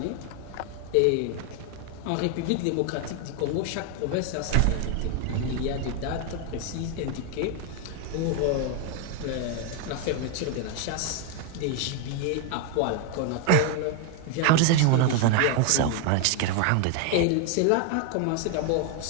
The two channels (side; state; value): both; different; correlation 0.01